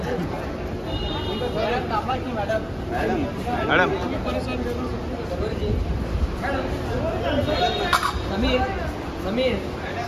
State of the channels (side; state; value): both; identical; correlation 1.00